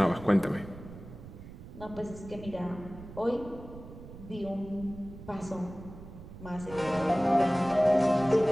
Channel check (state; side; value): noise; right; rumble, 15 dB below the sound